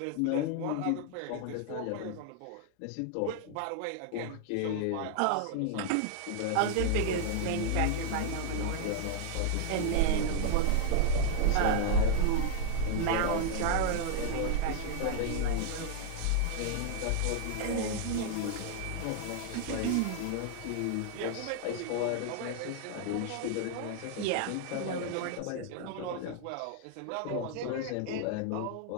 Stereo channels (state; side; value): different; both; correlation 0.00